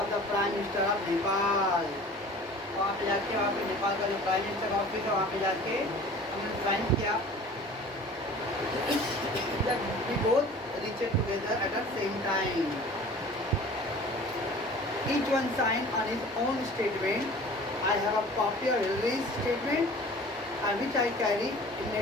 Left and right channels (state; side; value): normal; both; correlation 0.44